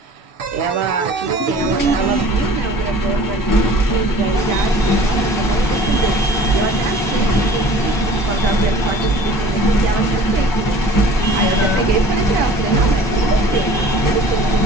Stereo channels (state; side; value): normal; both; correlation 0.47